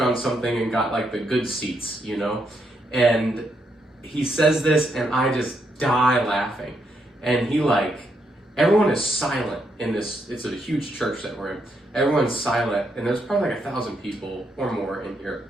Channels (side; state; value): both; normal; correlation 0.78